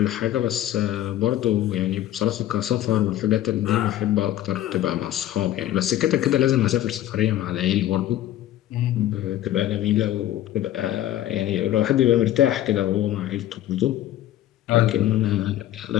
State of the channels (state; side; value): quieter; right; 13.1 dB